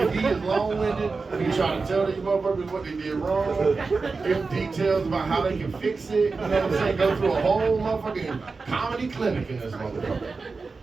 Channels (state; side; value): quieter; left; 4.2 dB